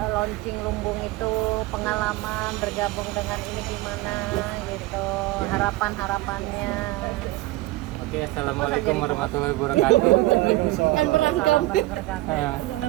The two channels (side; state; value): left; quieter; 18.6 dB